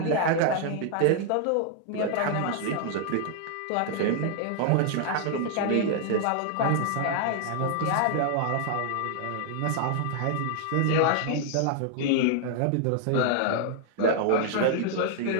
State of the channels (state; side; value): different; both; correlation 0.00